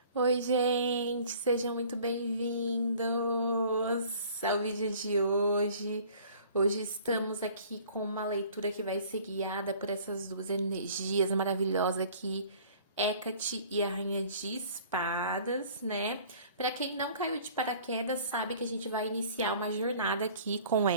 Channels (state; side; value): inverted; both; correlation -0.51